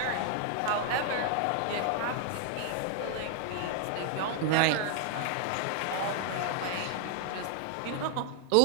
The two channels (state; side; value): different; both; correlation -0.01